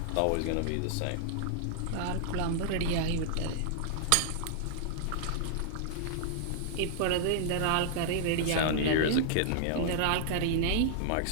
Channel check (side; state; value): both; different; correlation -0.01